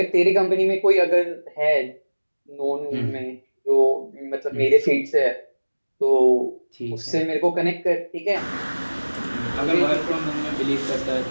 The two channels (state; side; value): inverted; both; correlation -1.00